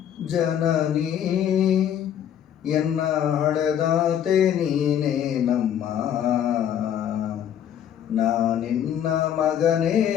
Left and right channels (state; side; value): quieter; right; 9.7 dB